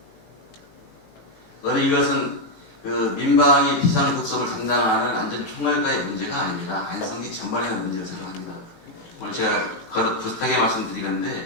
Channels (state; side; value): late; right; 18 ms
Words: 저는 이것은 그 민방위 비상급섭을 담당하는 안전총괄과의 문제가 아닙니다. 안성시 전반의 문제를 생각합니다. 오늘 제가 거듭 부탁하게 말씀드리건데